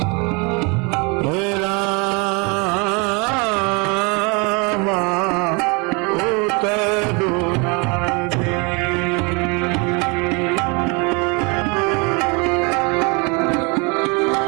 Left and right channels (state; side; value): quieter; left; 30.6 dB